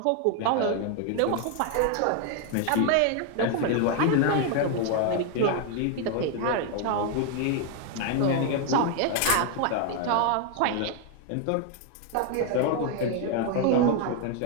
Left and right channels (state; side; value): different; both; correlation 0.01